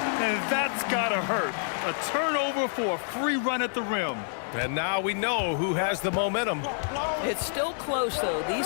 And that's gotta hurt. A turnover for a free run at the rim. And now we know who has the momentum. It's still close, though.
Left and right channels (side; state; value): right; silent; digital silence